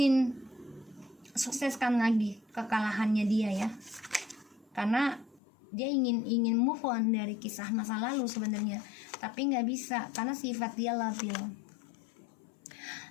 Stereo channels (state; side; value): drops out; right; at 5.4 s